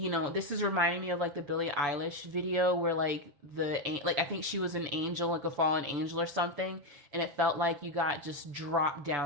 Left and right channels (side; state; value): left; late; 6.9 ms